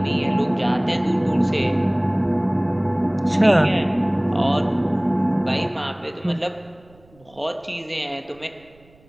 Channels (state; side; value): noise; right; rumble, 30 dB below the sound